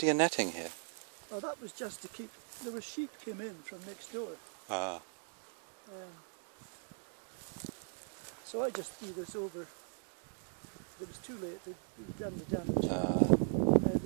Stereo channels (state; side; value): silent; left; 52 dB below the other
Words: to your netting here? Oh, that was just to keep, there were sheep came in from next door. So I just threw this over. It was too late, they'd done the damage.